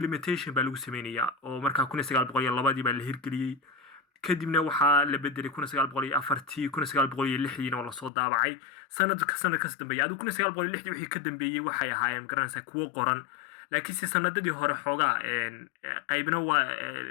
baa lagu sameynaya oo markaa 1902 baa la hirgeliyey, kadibna waxaa la bedelay 1904 1906 oo la soo daabacay sanadkaas dambeeyay. Adigu 1906 wixii ka dambeeyay waxay ahaayeen garanaysaa kuwo qoran, laakiinse sanadadii hore xoogaa qaybna waa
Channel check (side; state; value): right; drops out; at 8.1 s